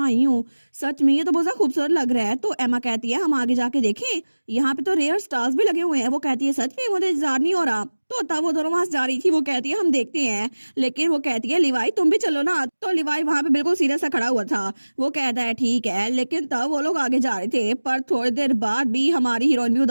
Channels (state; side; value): inverted; both; correlation -1.00